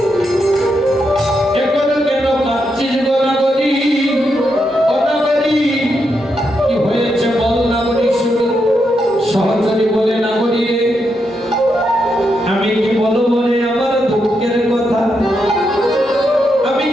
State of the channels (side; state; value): both; normal; correlation 0.82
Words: এখন কেন কাঁদছিস গো না করি, ও না করি কি হয়েছে বল না করি। শুধু সহচরী বলে না করি রে, আমি কি বলবো রে আমার দুঃখের কথা, আমি